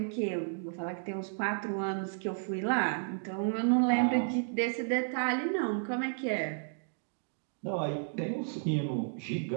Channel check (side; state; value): left; silent; digital silence